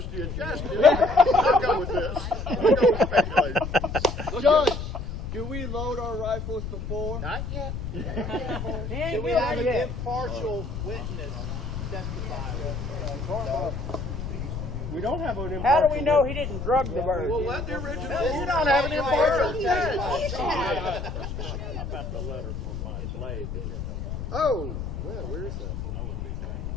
of justice. I'll go with this. I'll go with speculation. Judge, do we load our rifles before? Not yet. Do we have an impartial witness testify? We don't have an How do we know he didn't drug the bird? Well, let the original. You don't have an impartial judge. Oh, well, where is that?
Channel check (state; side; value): noise; left; rumble, 6 dB below the sound